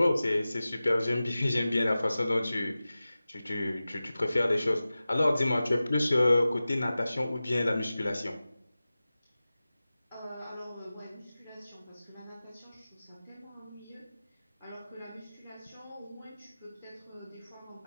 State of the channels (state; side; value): inverted; both; correlation -0.96